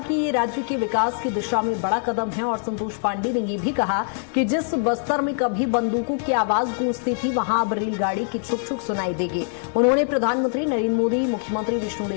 ये राज्य के विकास की दिशा में बड़ा कदम है और संतोष पांडे ने ये भी कहा कि जिस बस्तर में कभी बंदूकों की आवाज गूंजती थी वहां अब रेलगाड़ी की छुक छुक सुनाई देगी। उन्होंने प्रधानमंत्री नरेंद्र मोदी, मुख्यमंत्री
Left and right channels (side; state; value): right; silent; 63 dB below the other